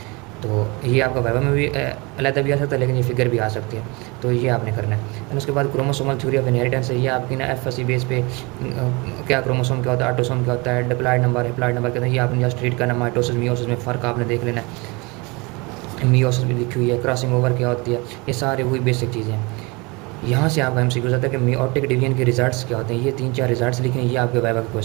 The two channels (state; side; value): quieter; left; 26.8 dB